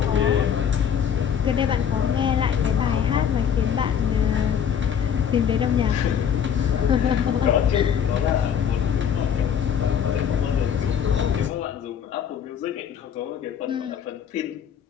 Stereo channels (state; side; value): quieter; right; 8.2 dB